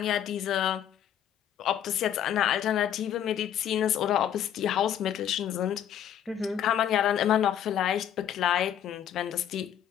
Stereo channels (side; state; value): right; quieter; 10.1 dB